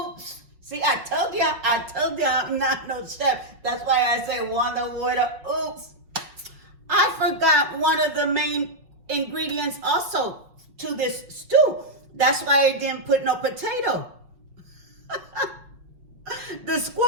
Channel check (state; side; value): late; left; 5.4 ms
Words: See, I told you I'm not no chef. That's why I say wonder what a, oops. I forgot one of the main ingredients also to this stew. That's why I didn't put no potato. The